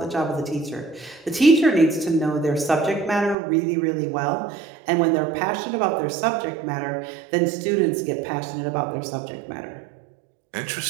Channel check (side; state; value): left; drops out; at 3.4 s